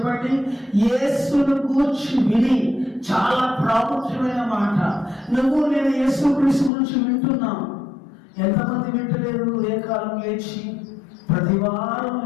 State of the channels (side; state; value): right; drops out; at 6.7 s